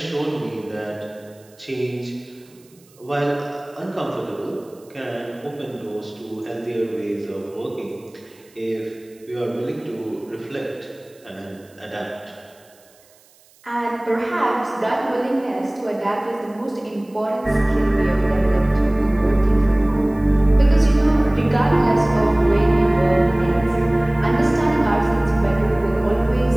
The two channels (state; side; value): noise; right; hiss, 30 dB below the sound